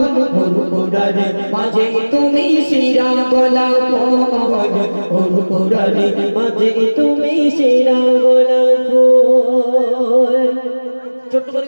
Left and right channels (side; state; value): both; inverted; correlation -1.00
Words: পুরারে মাঝে তুমি শিরা গোলাপ ফল, পুরারে মাঝে তুমি শিরা গোলাপ ফল। ছোট্ট করে